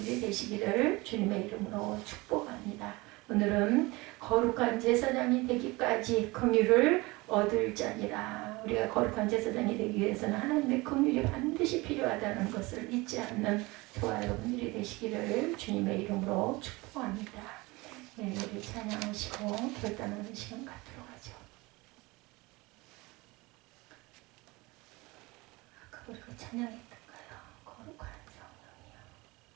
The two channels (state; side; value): quieter; left; 23.1 dB